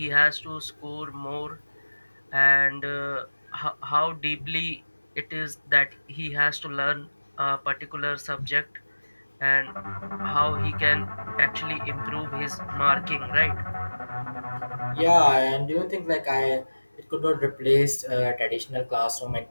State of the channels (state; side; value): inverted; both; correlation -1.00